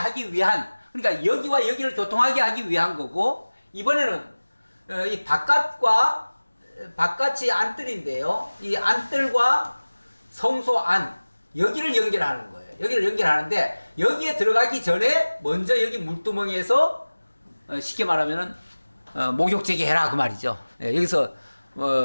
위한, 그러니까 여기와 여기를 교통하게 하기 위한 거고, 이번에는 이 바깥이 안뜰인데요. 이 안뜰과 성소 안, 여기를 연결하는 거예요. 여기를 연결하는데 여기에 들어가기 전에 먼저 여기 물두멍에서 쉽게 말하면은 목욕제기 해라 그 말이죠. 여기서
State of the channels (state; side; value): inverted; both; correlation -1.00